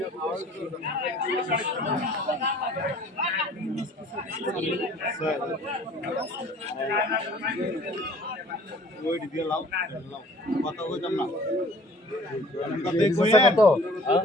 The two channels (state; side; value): normal; both; correlation 0.51